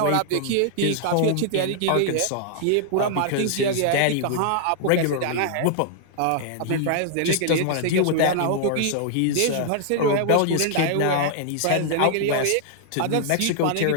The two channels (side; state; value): both; different; correlation -0.01